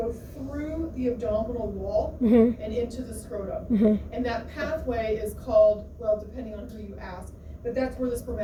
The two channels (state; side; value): identical; both; correlation 1.00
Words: through the abdominal wall and into the scrotum. And that pathway is called, well, depending on who you ask, but that's where the